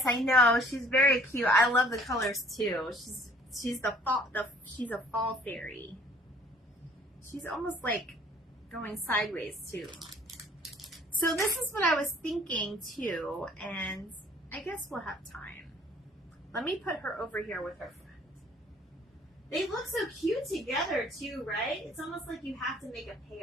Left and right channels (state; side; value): normal; both; correlation 0.56